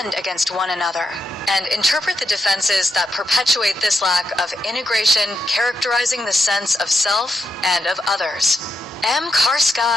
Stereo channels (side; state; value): both; normal; correlation 0.83